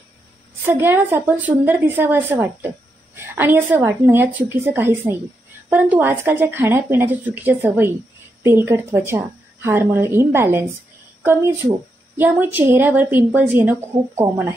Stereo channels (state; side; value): normal; both; correlation 0.83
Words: सगळ्यांनाच आपण सुंदर दिसावं असं वाटतं आणि असं वाटणं यात चुकीचं काहीच नाही. परंतु आजकालच्या खाण्यापिण्याच्या चुकीच्या सवयी, तेलकट त्वचा, हार्मोनल इम्बॅलन्स, कमी झोप यामुळे चेहऱ्यावर पिंपल्स येणं खूप कॉमन